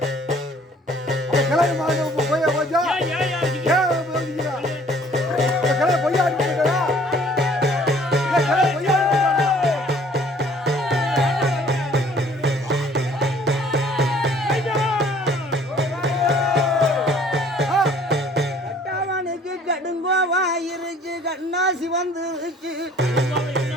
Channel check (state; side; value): normal; both; correlation 0.56